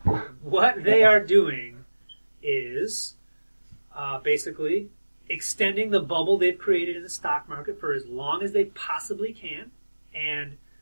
What they are doing is basically extending the bubble they've created in the stock market for as long as they possibly can. And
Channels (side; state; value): both; inverted; correlation -1.00